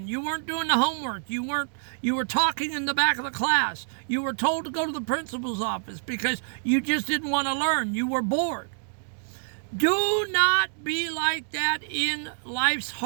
You weren't doing the homework. You were talking in the back of the class. You were told to go to the principal's office because you just didn't want to learn. You were bored. Do not be like that in life's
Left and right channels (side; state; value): left; silent; digital silence